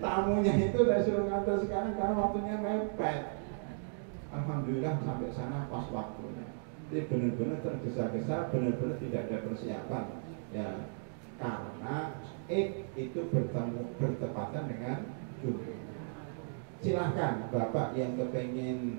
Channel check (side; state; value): left; silent; digital silence